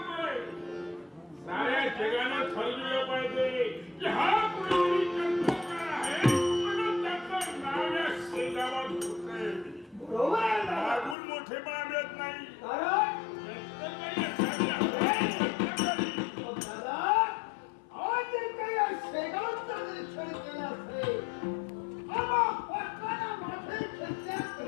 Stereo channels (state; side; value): drops out; right; at 11.2 s